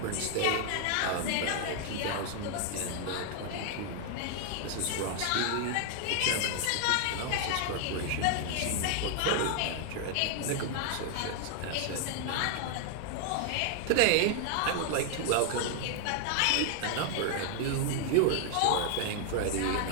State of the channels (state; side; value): different; both; correlation 0.00